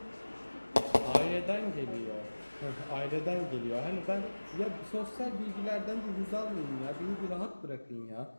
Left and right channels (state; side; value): inverted; both; correlation -1.00